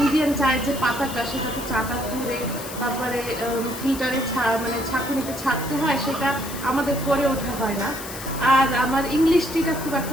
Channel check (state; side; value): noise; left; hiss, 11 dB below the sound